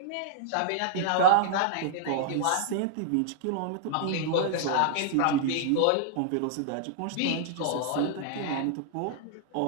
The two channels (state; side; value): different; both; correlation -0.01